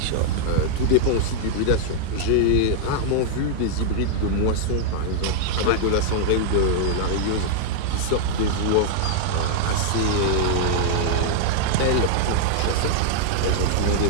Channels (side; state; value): both; different; correlation -0.01